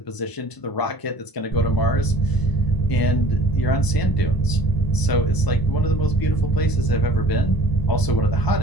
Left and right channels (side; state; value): right; late; 1.0 ms